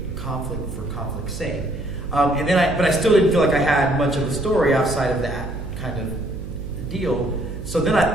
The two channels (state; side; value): noise; right; hum, 10 dB below the sound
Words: conflict for conflict's sake. But I still didn't feel like I had much of a story outside of that kind of deal. So then I